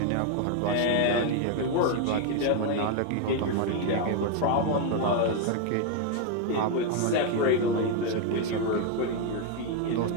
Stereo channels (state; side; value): different; both; correlation 0.01